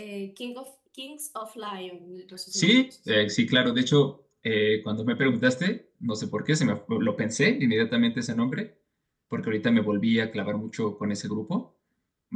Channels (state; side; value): identical; both; correlation 1.00